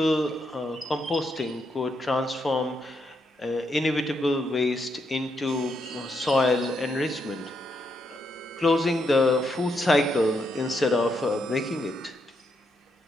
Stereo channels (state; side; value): normal; both; correlation 0.79